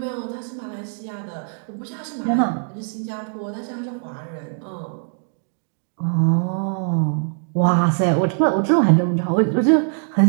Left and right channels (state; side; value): silent; left; 64 dB below the other